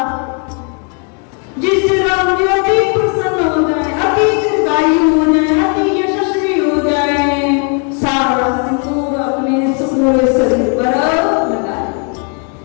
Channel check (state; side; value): quieter; right; 39.9 dB